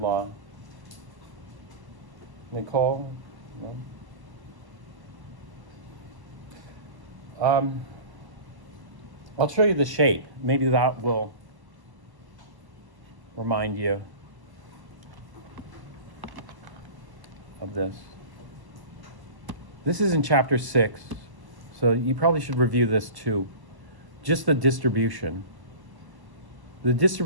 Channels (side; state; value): left; late; 1.1 ms